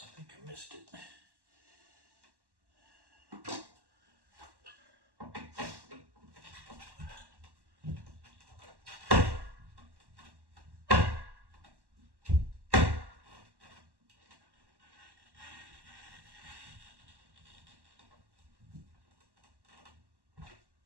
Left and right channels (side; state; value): left; late; 1.1 ms